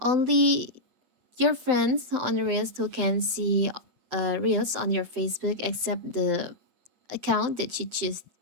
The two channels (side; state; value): left; late; 7.8 ms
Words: your friends on the reels who can see reels on your Facebook except the account that you choose.